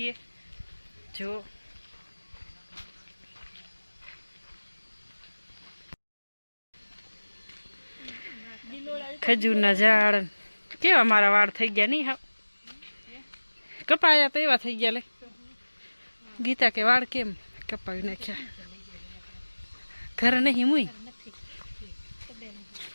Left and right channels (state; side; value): inverted; both; correlation -1.00